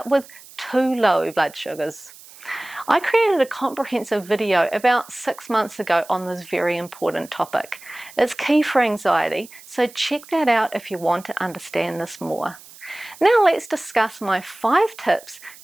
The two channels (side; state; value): right; noise; hiss, 20 dB below the sound